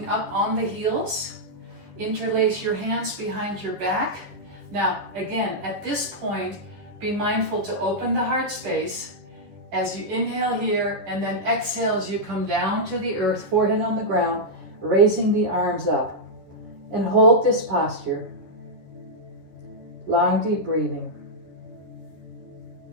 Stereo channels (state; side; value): late; left; 10 ms